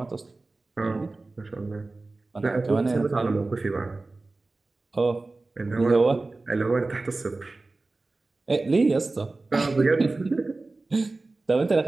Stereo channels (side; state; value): left; quieter; 3.3 dB